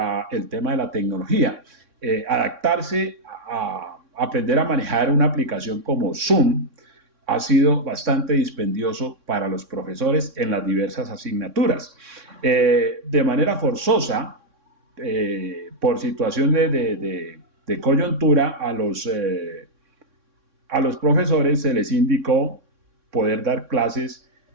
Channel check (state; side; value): late; left; 3.6 ms